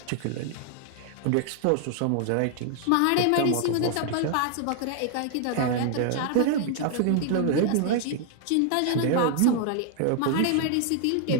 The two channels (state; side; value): different; both; correlation 0.00